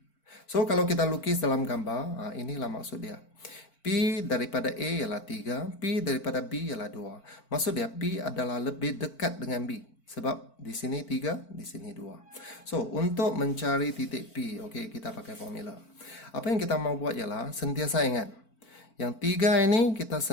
So, kalau kita lukis dalam gambar, inilah maksud dia. P daripada A ialah 3, P daripada B ialah 2. Maksud dia, P adalah lebih dekat dengan B. Sebab di sini 3, di sini 2. So, untuk mencari titik P, okey, kita pakai formula. Apa yang kita mau buat ialah, sentiasa ingat. Yang 3 ini kita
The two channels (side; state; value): right; late; 4.5 ms